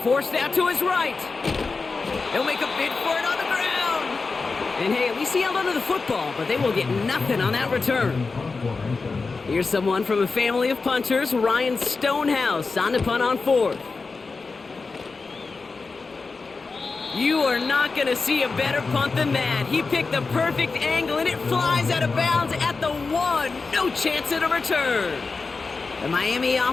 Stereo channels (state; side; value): quieter; right; 4.2 dB